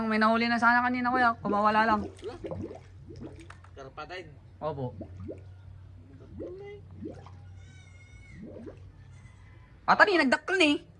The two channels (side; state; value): both; identical; correlation 1.00